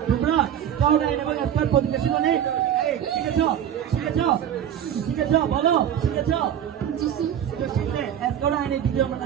তোমরা? স্কাউট আইন এবং স্কাউট পজিশন নেই। এই শিখেছো? বলো শিখেছো? জি স্যার। তো শিখলে স্কাউট আইনের দ্বিতীয়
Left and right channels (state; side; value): quieter; left; 9.8 dB